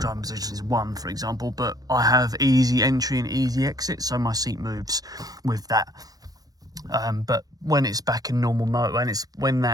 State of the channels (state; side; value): late; left; 0.18 ms